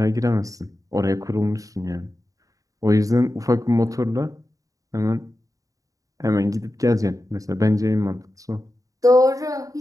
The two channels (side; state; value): left; late; 0.16 ms